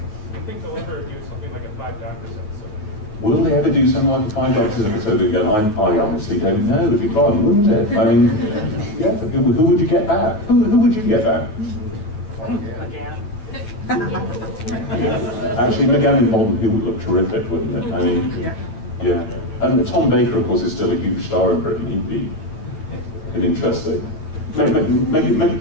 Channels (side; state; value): right; late; 9.3 ms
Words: I think they'll ever do something like a 5 Doctors episode. Will they ever do something like a 5 Doctors episode again? I honestly don't know. It'd be fun, wouldn't it? I mean, yeah. Who would you get back? Who would you get back? McGann. Actually, McGann and Bond, who would look terrific, wouldn't it? I mean, yeah. And Tom Baker, of course, is still a huge star in Britain. He'd be an interesting.